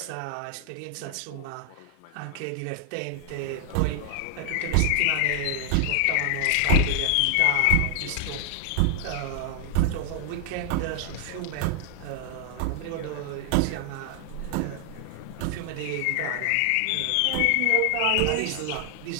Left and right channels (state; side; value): different; both; correlation 0.00